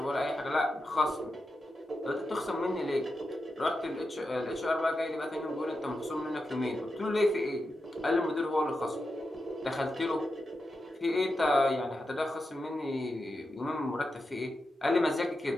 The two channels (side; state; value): both; normal; correlation 0.89